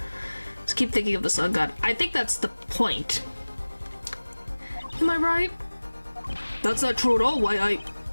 Just keep thinking of the sun god. I think that's the point. Am I right? That's not true at all. Why,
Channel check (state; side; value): inverted; both; correlation -1.00